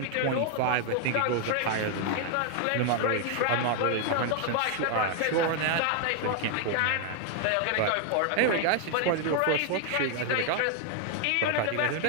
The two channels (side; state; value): both; different; correlation 0.00